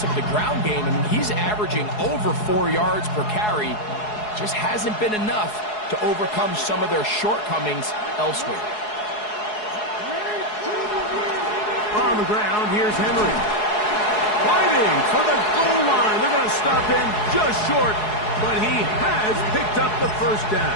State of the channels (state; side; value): late; right; 4.7 ms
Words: of the ground game. I mean, he's averaging over 4 yards per carry. Just hasn't been enough to overcome some of their shortcomings elsewhere. On the ground, here's Henry. Fighting for the goal line. They're going to stop him just short, but he has picked up the first